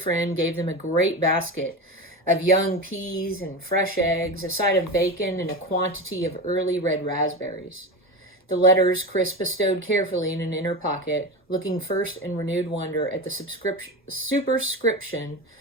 gave them a great basket of young peas and fresh eggs, a side of bacon, and a quantity of early red raspberries. The letters Chris bestowed carefully in an inner pocket, looking first in renewed wonder at the superscription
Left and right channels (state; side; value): normal; both; correlation 0.23